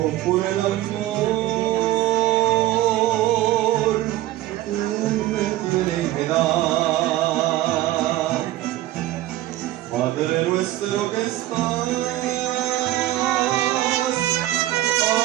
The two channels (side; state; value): left; quieter; 15.3 dB